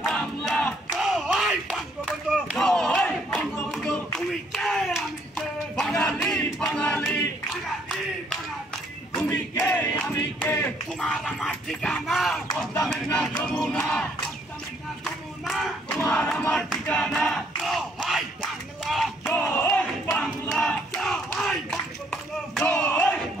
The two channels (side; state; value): both; normal; correlation 0.67